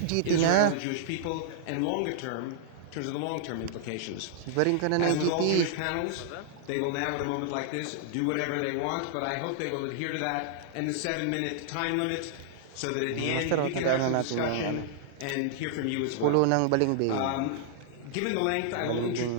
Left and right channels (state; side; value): different; both; correlation -0.01